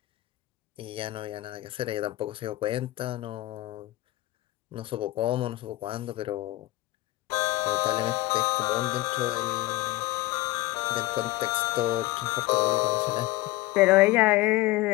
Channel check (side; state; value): right; quieter; 18.6 dB